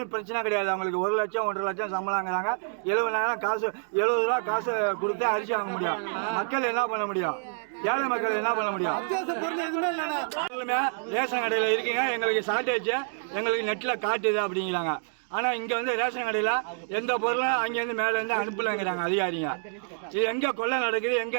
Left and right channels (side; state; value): left; silent; digital silence